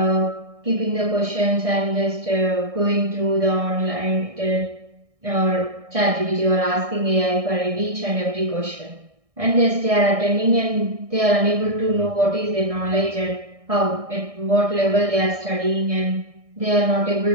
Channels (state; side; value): late; left; 1.6 ms